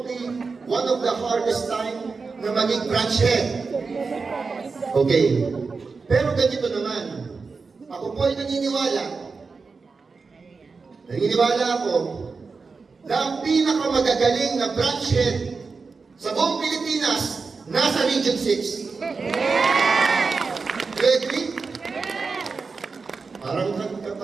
one of the hardest time na maging branch head. Okay. Pero ganito naman, ako po ay naniniwala ako na ang pinakamagagaling na branch head sa buong Pilipinas nasa Region 6. Yes! Do you agree? Yes! Parang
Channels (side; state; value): left; quieter; 4.6 dB